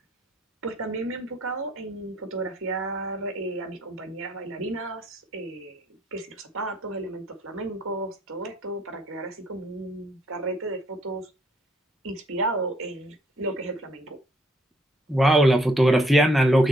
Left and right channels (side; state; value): both; normal; correlation 0.67